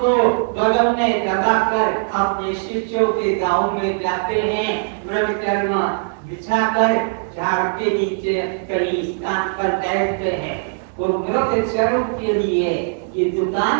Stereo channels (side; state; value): left; silent; digital silence